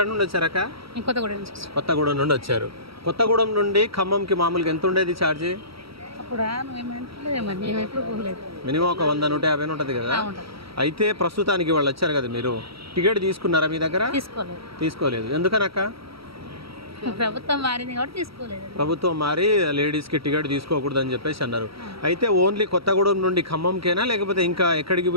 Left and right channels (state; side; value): late; left; 0.75 ms